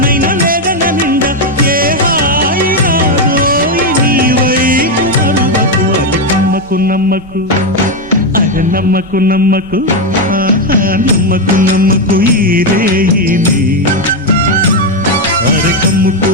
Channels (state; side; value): normal; both; correlation 0.06